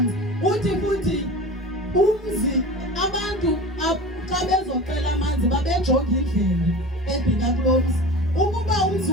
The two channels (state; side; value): normal; both; correlation 0.34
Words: Uthi futhi umzi abantu xa bezocela amanzi babejonga indlela ebheka kulo mzi. Ukuba umzi